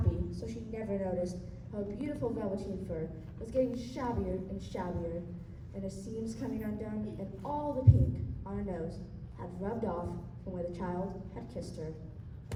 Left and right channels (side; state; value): both; identical; correlation 1.00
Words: so she never noticed how her beautiful velveteen fur was getting shabbier and shabbier, and her seams coming undone, and all the pink on her nose had rubbed off from where the child had kissed her.